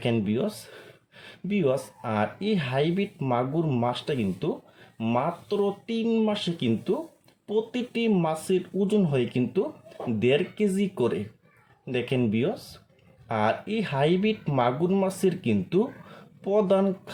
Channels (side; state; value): both; identical; correlation 1.00